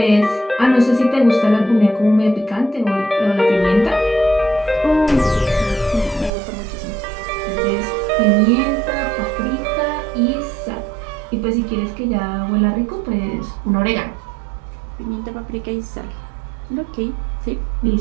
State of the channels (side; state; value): left; drops out; at 6.3 s